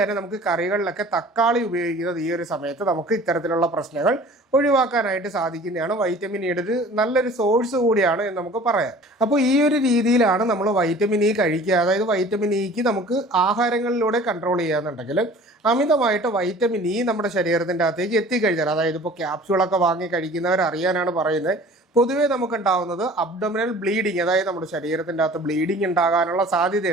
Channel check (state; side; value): normal; both; correlation 0.46